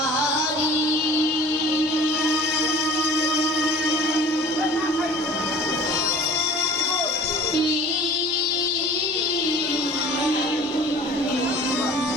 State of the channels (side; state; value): both; normal; correlation 0.45